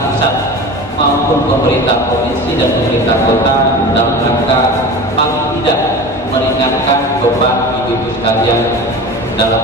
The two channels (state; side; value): normal; both; correlation 0.33